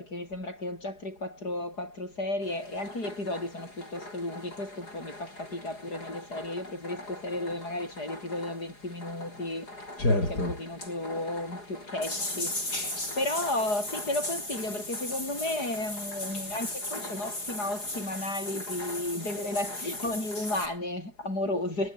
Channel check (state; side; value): late; right; 4.8 ms